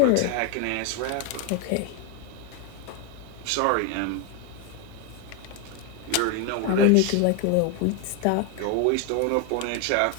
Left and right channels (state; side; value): different; both; correlation 0.01